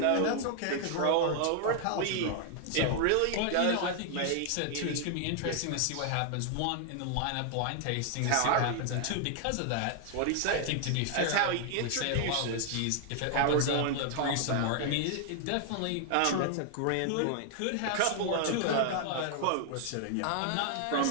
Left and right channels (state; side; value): different; both; correlation 0.00